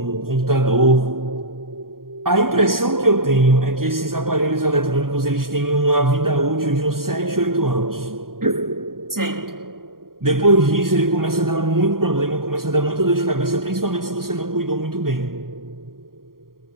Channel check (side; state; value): left; late; 0.92 ms